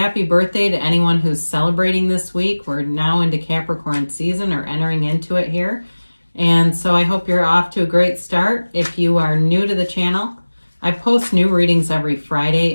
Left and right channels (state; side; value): inverted; both; correlation -1.00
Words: birthday to anyone who's celebrating this week. We're now into Capricorn season or entering into it here. And so I hope you're off to a great start. If you are new to the channel, I post new readings every